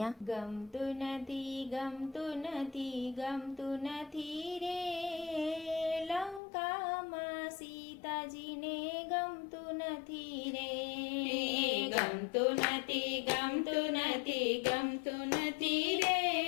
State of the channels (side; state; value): right; drops out; at 6.4 s